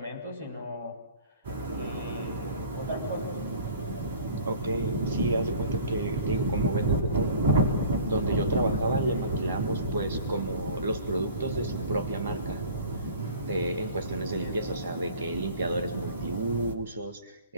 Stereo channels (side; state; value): both; inverted; correlation -0.46